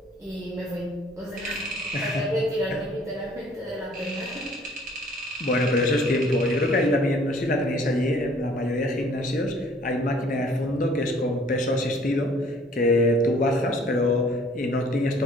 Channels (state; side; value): normal; both; correlation 0.56